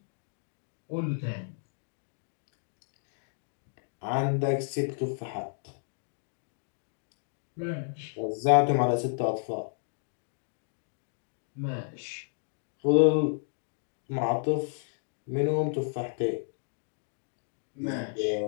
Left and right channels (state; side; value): silent; right; digital silence